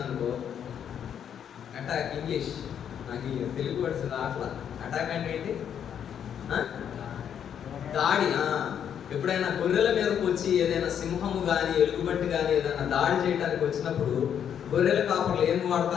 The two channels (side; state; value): right; quieter; 8.8 dB